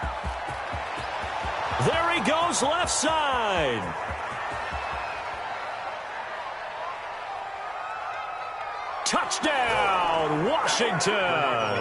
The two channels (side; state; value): both; identical; correlation 1.00